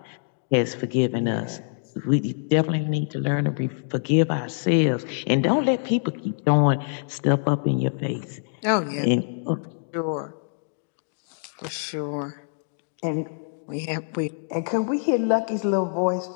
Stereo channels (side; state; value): right; silent; 62 dB below the other